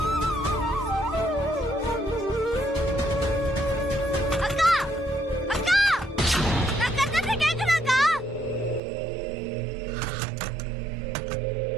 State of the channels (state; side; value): drops out; left; at 8.8 s